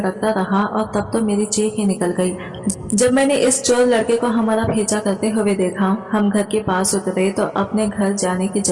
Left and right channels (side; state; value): both; identical; correlation 1.00